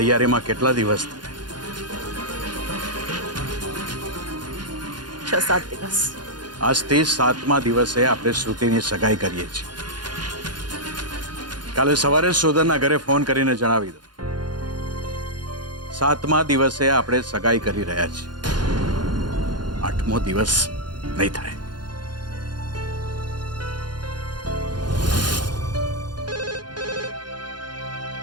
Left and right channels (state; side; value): late; left; 0.70 ms